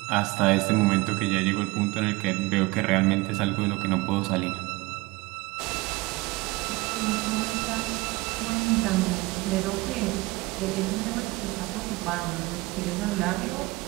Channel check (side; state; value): left; quieter; 22.5 dB